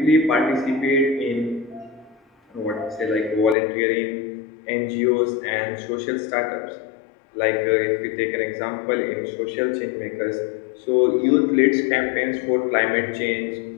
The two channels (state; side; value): drops out; right; at 3.6 s